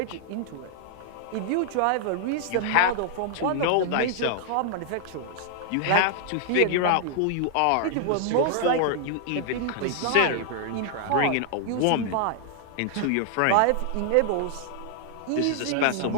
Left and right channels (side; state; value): both; different; correlation -0.01